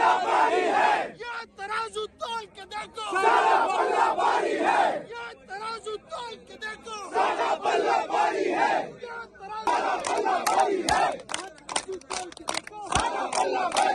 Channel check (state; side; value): identical; both; correlation 1.00